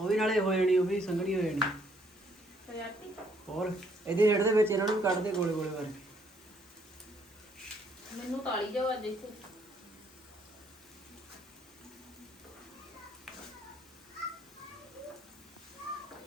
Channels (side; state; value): both; normal; correlation 0.67